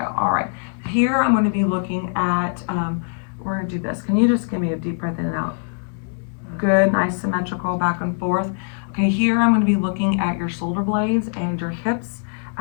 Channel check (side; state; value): right; silent; 64 dB below the other